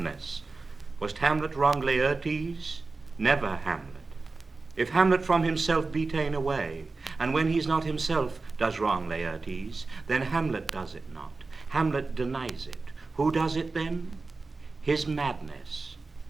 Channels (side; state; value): left; quieter; 3.8 dB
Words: Was Hamlet wrong Laertes? Never Hamlet. If Hamlet from himself be ta'en away, and when he's not himself does wrong Laertes, then Hamlet does it not. Hamlet denies it. Who does it then? His madness.